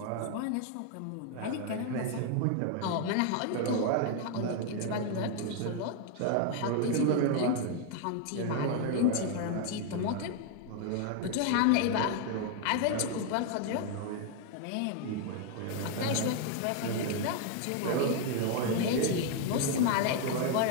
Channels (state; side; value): different; both; correlation 0.00